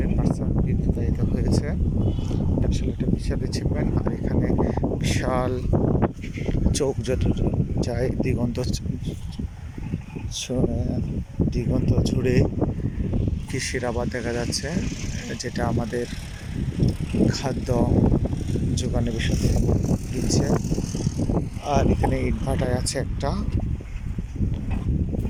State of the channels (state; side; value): identical; both; correlation 1.00